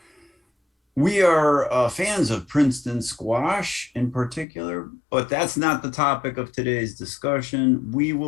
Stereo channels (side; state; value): right; drops out; at 4.5 s